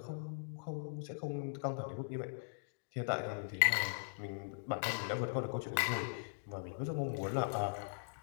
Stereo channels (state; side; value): silent; right; digital silence